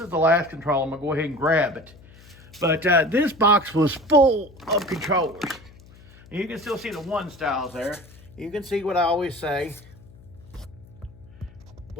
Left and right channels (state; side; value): noise; left; hum, 23 dB below the sound